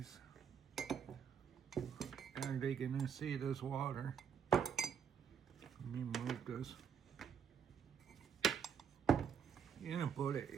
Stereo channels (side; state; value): left; quieter; 7.3 dB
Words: Are they gonna see this water? Let me move this. You're gonna put it